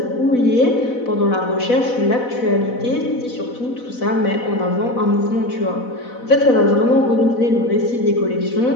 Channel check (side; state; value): right; late; 4.1 ms